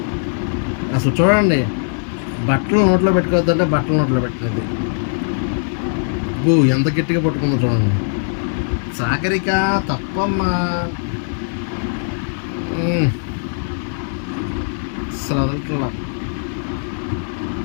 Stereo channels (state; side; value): silent; right; digital silence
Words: అసలు చూడండి బట్టలు నోట్లో పెట్టుకోవద్దంటే బట్టలు నోట్లో పెట్టినది. అబ్బో ఎంత గట్టిగా పట్టుకుందో చూడండి. సాగరిక తప్పమ్మా. అసలు వదలట్లా.